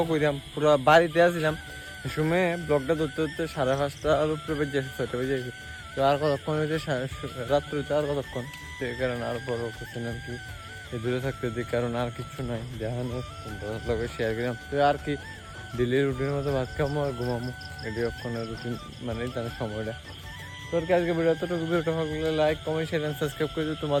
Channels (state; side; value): identical; both; correlation 1.00